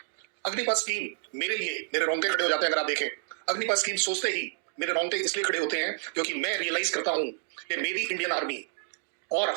अग्निपथ स्कीम मेरे लिए मेरे रोंगटे खड़े हो जाते हैं अगर आप देखें। अग्निपथ स्कीम सोचते ही मेरे रोंगटे इसलिए खड़े होते हैं क्योंकि मैं रियलाइज करता हूं कि मेरी इंडियन आर्मी और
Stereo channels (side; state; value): left; silent; digital silence